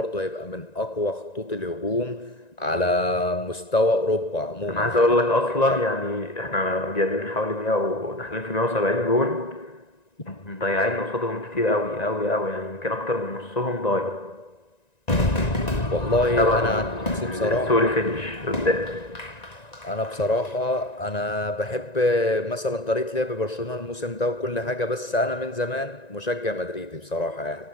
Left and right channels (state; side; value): late; right; 1.9 ms